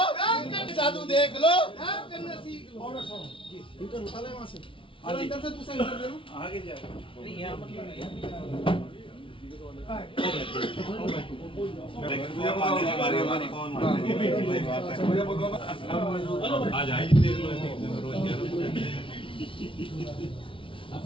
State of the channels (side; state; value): right; late; 0.25 ms